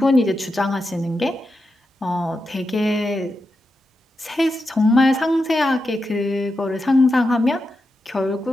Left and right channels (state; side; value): normal; both; correlation 0.88